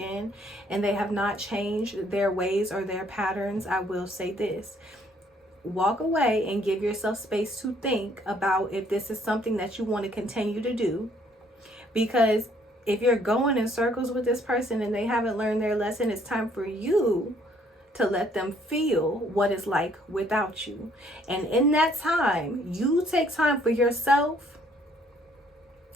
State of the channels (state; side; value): normal; both; correlation 0.64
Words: and they have not changed their ways or their patterns, I will say this: walk away and give yourself space to think about if this is something that you want to continue to do. Because if you're going in circles with this person and they haven't learned their lesson, it's time for you to let them feel what it's like without you. And in that time, you take time for yourself